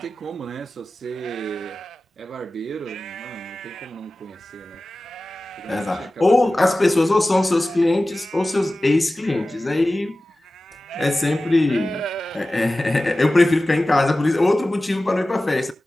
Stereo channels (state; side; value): normal; both; correlation 0.96